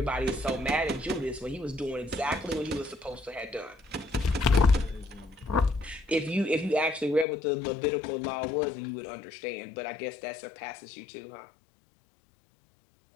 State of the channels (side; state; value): right; drops out; at 7.2 s